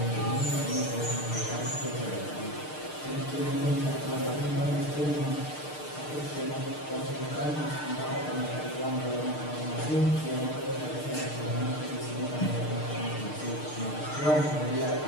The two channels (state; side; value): late; right; 6.6 ms